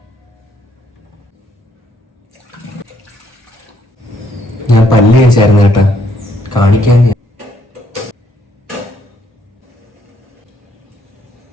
ഞാൻ പല്ല് കഴിച്ചായിരുന്നു കേട്ടാ, കാണിക്കാൻ.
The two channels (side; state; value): both; normal; correlation 0.70